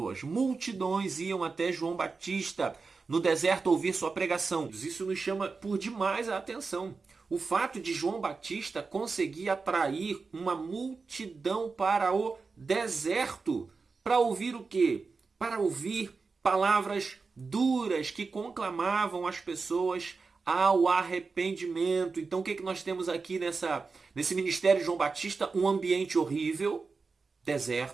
Multidões iam até João Batista no deserto ouvir sua pregação. Isso nos chama por demais a atenção. O fato de João Batista conseguir atrair uma multidão para o deserto. Para ouvir o quê? Para ouvir palavras duras que conclamavam as pessoas ao arrependimento. Então o que nós temos aqui nesse ministério de João Batista? Um ambiente horrível,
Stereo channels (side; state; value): left; quieter; 4.5 dB